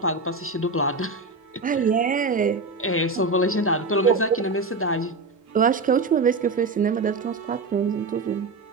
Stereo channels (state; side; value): quieter; left; 3.6 dB